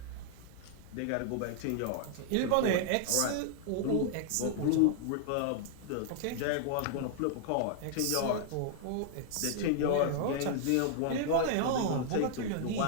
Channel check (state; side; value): different; both; correlation 0.00